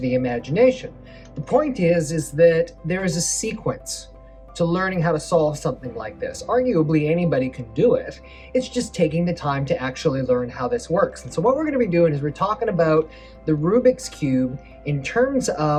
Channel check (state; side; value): identical; both; correlation 1.00